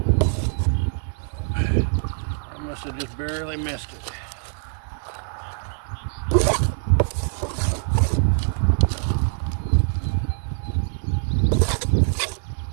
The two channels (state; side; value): silent; left; digital silence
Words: I must have just barely missed it.